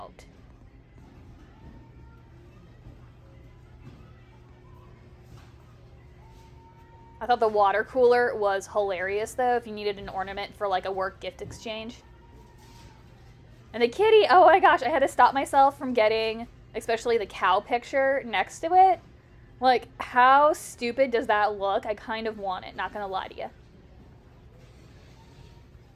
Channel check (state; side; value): identical; both; correlation 1.00